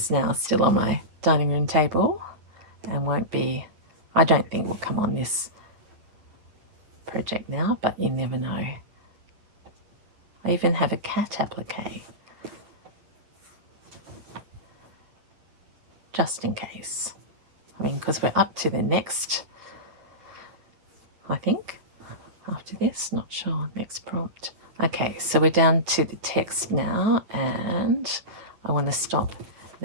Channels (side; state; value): left; late; 9.5 ms